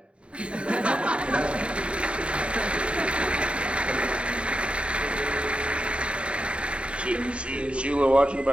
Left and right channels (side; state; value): left; late; 0.058 ms